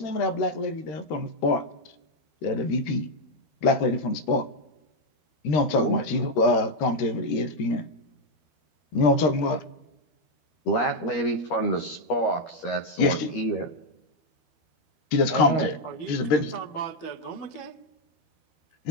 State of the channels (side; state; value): right; late; 13 ms